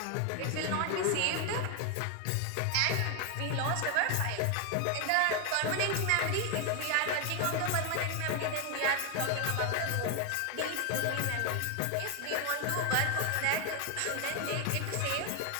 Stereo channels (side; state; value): both; different; correlation 0.01